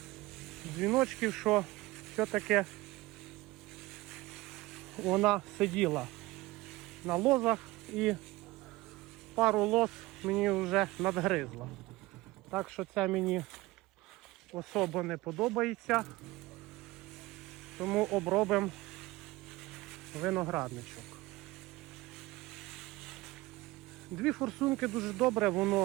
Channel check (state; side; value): quieter; left; 19.9 dB